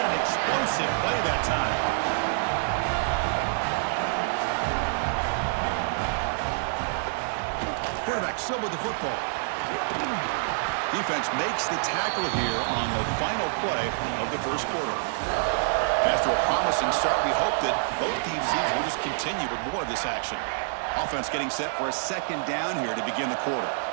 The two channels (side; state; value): left; silent; 60 dB below the other